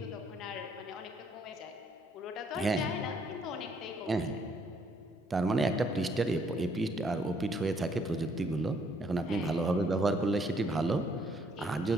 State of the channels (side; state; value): both; normal; correlation 0.67